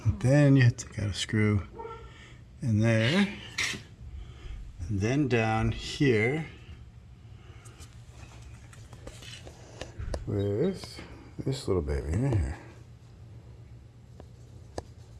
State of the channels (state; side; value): identical; both; correlation 1.00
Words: Then you have to take out a screw in there. And then down here with this little baby right here.